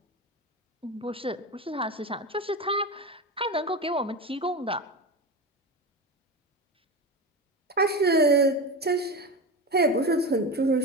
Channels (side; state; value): both; normal; correlation 0.22